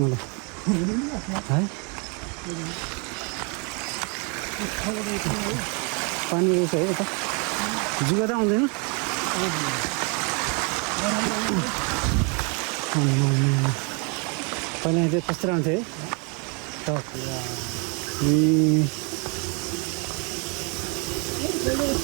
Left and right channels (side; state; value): left; quieter; 34.5 dB